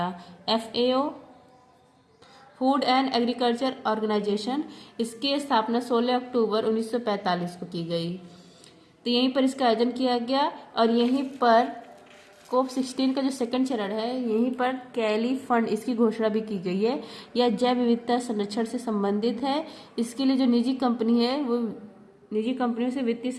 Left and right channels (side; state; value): both; identical; correlation 1.00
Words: FAO food and agriculture organization, इसकी स्थापना 16 अक्टूबर 1945 को की गई। तो यहीं पर इसका आयोजन किया गया, और यहीं पर कोप 16 का जो सेकंड चरण है यहीं पर कैली फंड इसकी घोषणा भी की गई है। यह जैव विविधता संरक्षण से संबंधित है। इसके लिए जो निजी कंपनी है वो निजी कंपनियों से वित्तीय